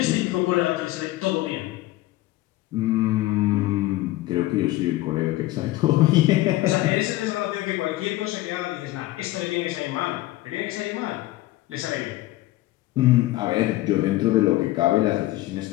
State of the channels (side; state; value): right; quieter; 17.2 dB